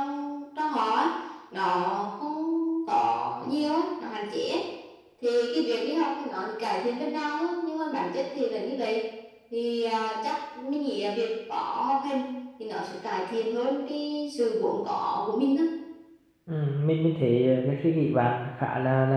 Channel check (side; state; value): both; identical; correlation 1.00